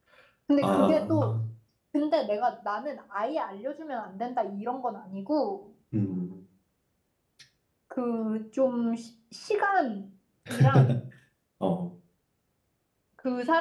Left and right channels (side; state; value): both; identical; correlation 1.00